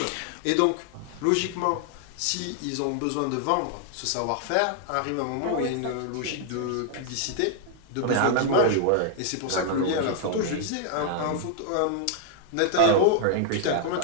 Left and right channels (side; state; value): both; different; correlation 0.00